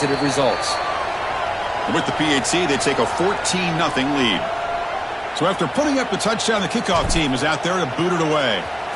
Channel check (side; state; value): both; identical; correlation 1.00